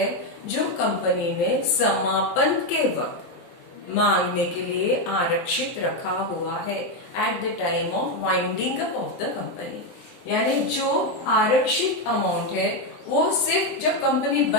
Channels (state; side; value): late; right; 23 ms